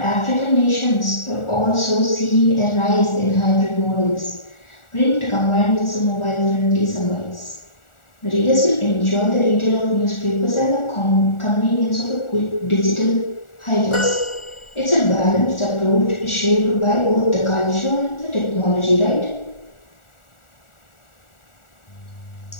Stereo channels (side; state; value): right; late; 1.4 ms